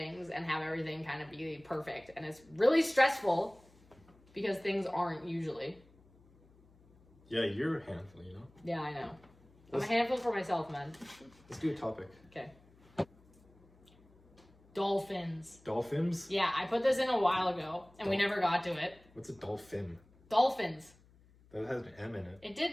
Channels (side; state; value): left; noise; hum, 28 dB below the sound